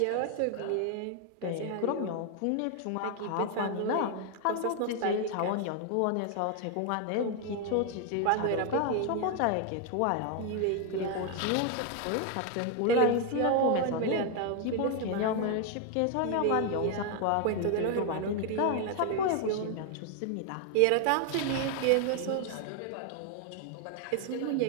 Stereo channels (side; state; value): both; different; correlation 0.00